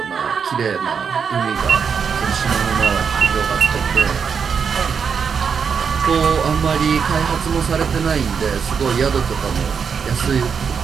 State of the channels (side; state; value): left; quieter; 6.4 dB